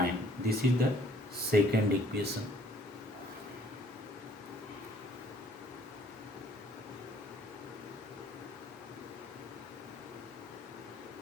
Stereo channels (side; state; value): both; normal; correlation 0.59